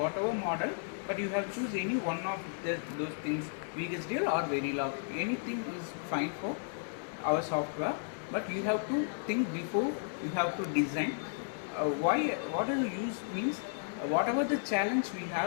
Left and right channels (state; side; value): silent; right; 55 dB below the other